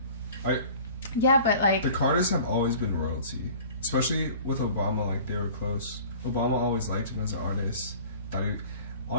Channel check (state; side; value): inverted; both; correlation -0.45